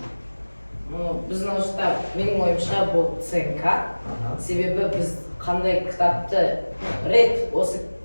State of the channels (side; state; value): both; inverted; correlation -1.00